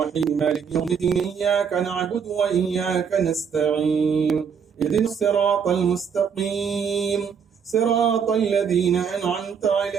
मालिकि यौमिद्दीन इय्याका नअबुदु व इय्याका नस्तईन इहदिनस सिरातल मुस्तक़ीम सिरातल लज़ीना अनअमता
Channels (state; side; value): quieter; left; 6.8 dB